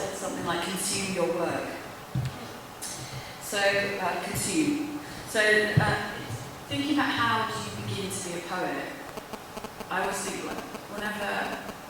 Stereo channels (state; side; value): identical; both; correlation 1.00